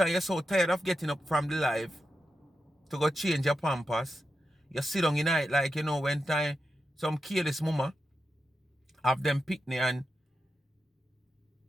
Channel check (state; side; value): normal; both; correlation 0.88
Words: you're so tired of getting up from the live to go change your pampers. You sit down in night like, you know, when time some careless mama have them picnic and